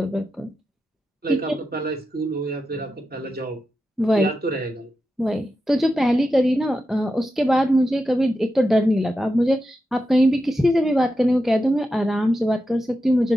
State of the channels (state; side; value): normal; both; correlation 0.89